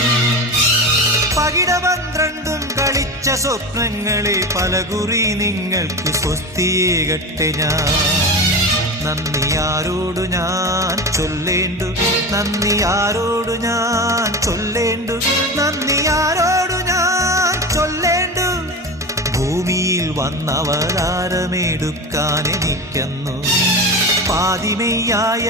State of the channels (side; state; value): both; normal; correlation 0.25